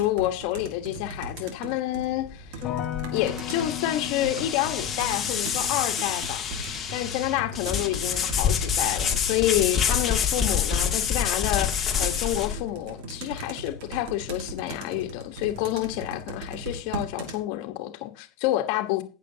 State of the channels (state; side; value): quieter; right; 9.2 dB